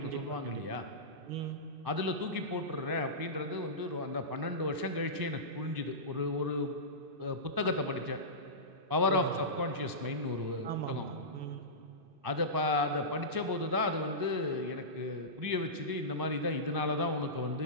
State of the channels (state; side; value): late; left; 2.6 ms